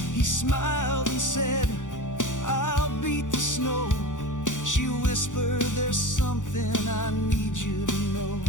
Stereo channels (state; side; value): late; right; 0.86 ms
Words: He smiled and said, "I'll beat the snow." She whispered, "There's something I need you to know."